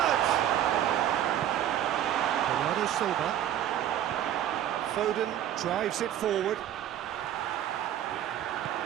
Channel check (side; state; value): left; quieter; 11.2 dB